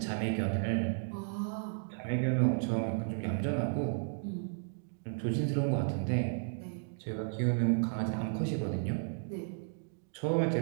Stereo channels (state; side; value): silent; left; digital silence